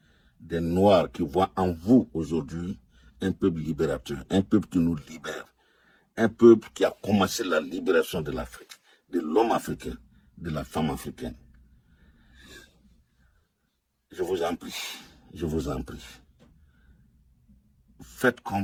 des Noirs qui voient en vous aujourd'hui un peuple libérateur, un peuple qui nous libère, un peuple qui a commencé la libération de l'Afrique, de l'homme africain, de la femme africaine. Je vous en prie, je vous en prie. Faites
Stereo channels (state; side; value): identical; both; correlation 1.00